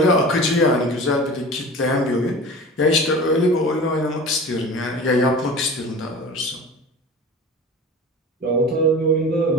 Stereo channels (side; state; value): both; normal; correlation 0.36